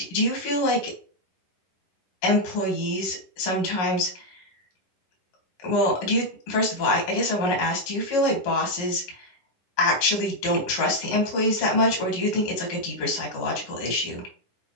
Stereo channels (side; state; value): right; late; 11 ms